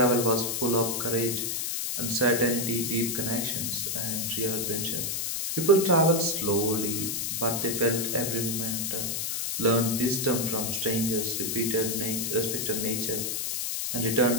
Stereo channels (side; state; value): left; noise; hiss, 1 dB below the sound